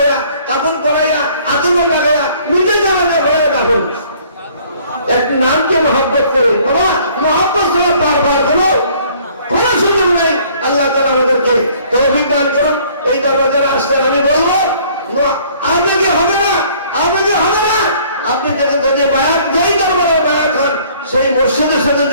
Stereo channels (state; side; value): inverted; both; correlation -0.58